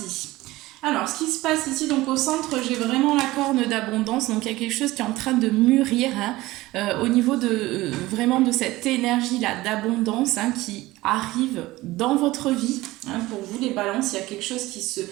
Alors, ce qui se passe ici, donc au centre, j'ai vraiment la corne d'abondance. Donc, il y a quelque chose qui est en train de mûrir au niveau de vraiment de cette énergie-là d'abondance qui arrive dans votre vie. Pour vous, les balances, il y a quelque chose qui se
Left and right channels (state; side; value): quieter; left; 18.6 dB